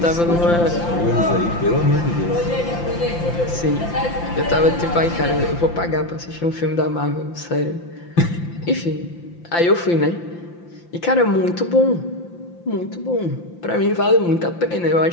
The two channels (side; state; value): right; late; 5.8 ms